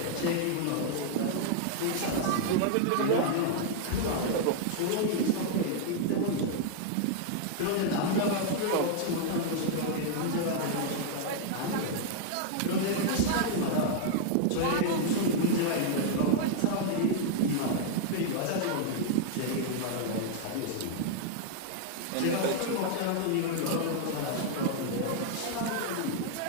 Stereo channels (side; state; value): both; different; correlation 0.00